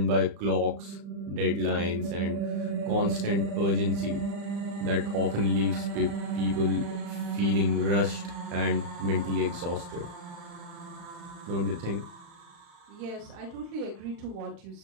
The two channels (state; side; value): late; left; 35 ms